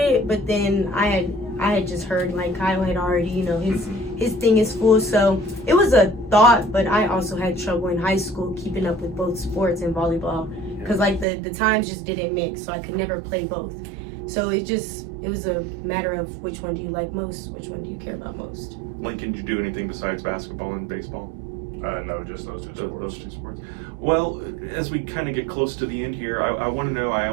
but then I had just heard like Kyle had already, his thing is full, so it was a thought. But I also had trouble in high school keeping up with both sports and volleyball, because like the times just didn't mix, so I could never play both. So it was a matter of which one do you like most, which one do you care about most. Lincoln, did you do anything besides basketball and baseball? No, just those two sports. Those two sports. Well, as we kind of get close to the end here, I want to know, I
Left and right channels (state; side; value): drops out; left; at 11.2 s